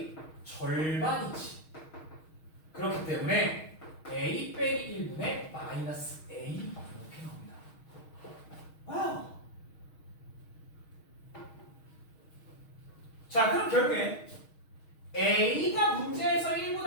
절반이지. 그렇기 때문에 A 빼기 1분의 마이너스 A 이렇게 나옵니다. 와우. 자, 그럼 결국에 A가 문제에서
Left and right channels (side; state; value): right; late; 6.4 ms